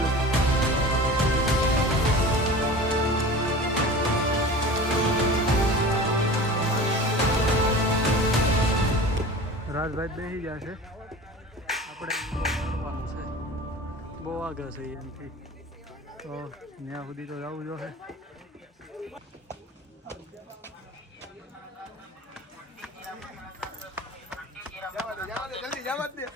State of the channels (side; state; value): both; normal; correlation 0.37